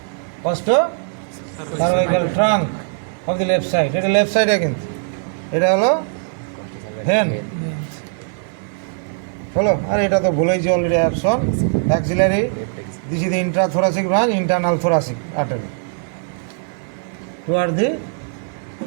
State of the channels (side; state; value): left; silent; 64 dB below the other